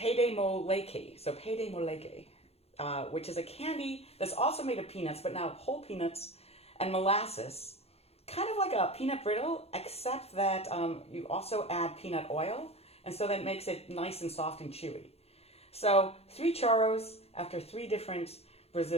de Moleque. So Pé de Moleque, which is a candy that's also made of peanuts, but now whole peanuts and molasses, kind of like a peanut brittle, except that you also add peanut oil, and so that makes it nice and soft and chewy. So 3 choros after 3 different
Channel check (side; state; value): right; late; 0.29 ms